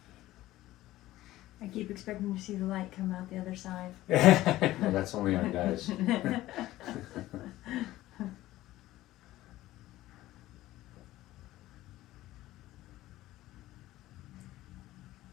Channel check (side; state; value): right; quieter; 15.9 dB